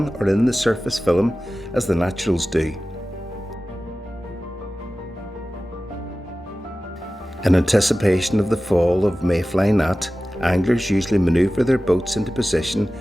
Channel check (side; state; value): both; normal; correlation 0.96